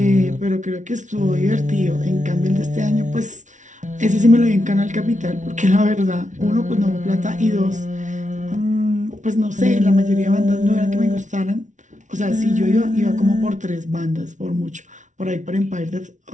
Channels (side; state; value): left; late; 0.36 ms